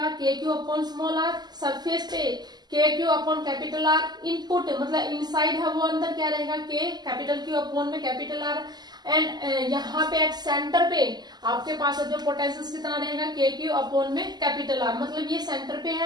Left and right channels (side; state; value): left; late; 0.20 ms